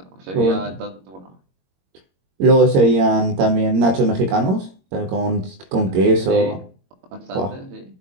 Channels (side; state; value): left; late; 21 ms